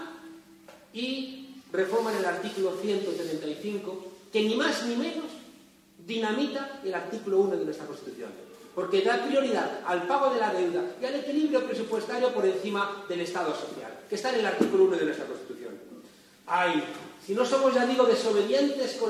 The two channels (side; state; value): both; identical; correlation 1.00